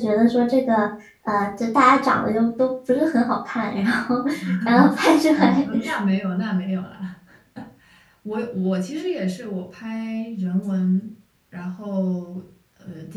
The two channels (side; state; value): both; identical; correlation 1.00